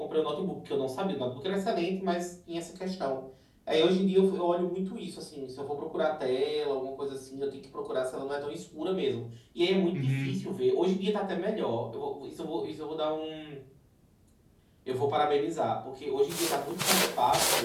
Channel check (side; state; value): both; identical; correlation 1.00